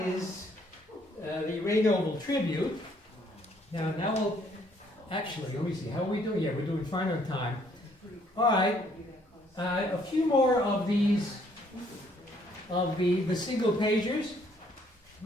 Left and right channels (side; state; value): both; normal; correlation 0.66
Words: is the Ray Noble tribute. Now we'll, actually, let me see, how are we doing? Yeah, we're doing fine on time. All right, a few more of these, of the single pagers.